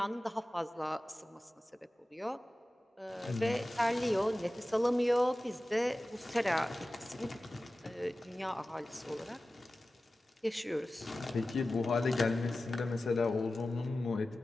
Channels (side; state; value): both; normal; correlation 0.95